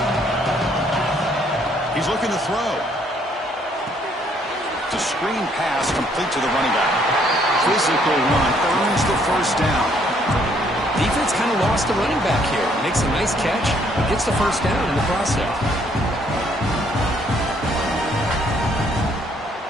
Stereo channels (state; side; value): normal; both; correlation 0.66